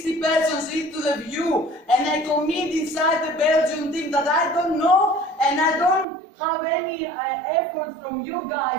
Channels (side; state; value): left; drops out; at 6.1 s